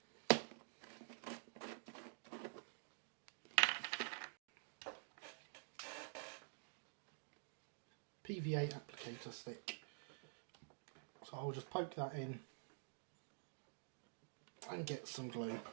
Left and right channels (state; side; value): silent; left; digital silence